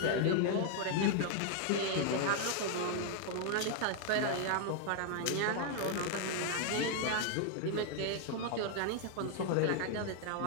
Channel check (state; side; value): different; both; correlation 0.00